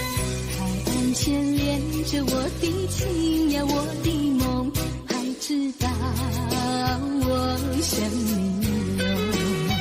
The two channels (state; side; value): identical; both; correlation 1.00